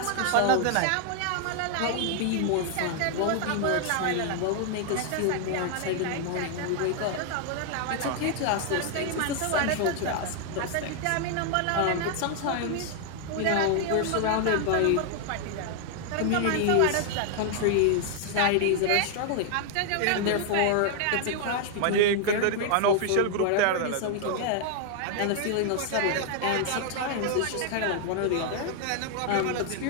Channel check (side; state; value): both; different; correlation 0.00